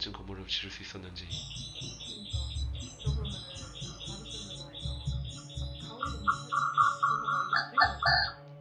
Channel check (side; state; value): both; identical; correlation 1.00